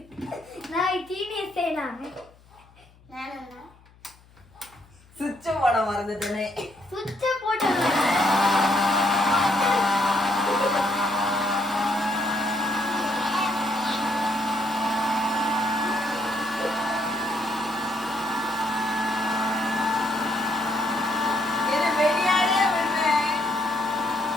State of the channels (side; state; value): left; noise; hum, 27 dB below the sound